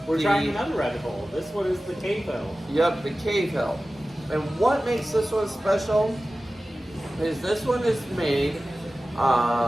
We're trying another rabbit hole. This one is the Cavehill. Yep, the Cavehill. And what makes this one special is this one is made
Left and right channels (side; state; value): both; normal; correlation 0.96